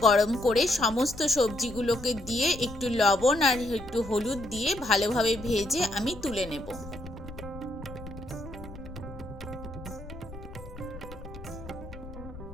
গরম করে সমস্ত সবজিগুলোকে দিয়ে একটু লবণ আর একটু হলুদ দিয়ে ভালোভাবে ভেজে আমি তুলে নেব।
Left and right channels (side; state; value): left; noise; rumble, 14 dB below the sound